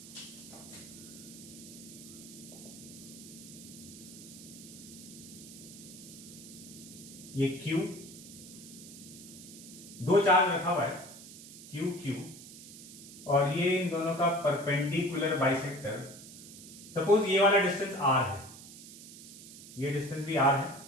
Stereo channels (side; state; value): right; noise; hiss, 15 dB below the sound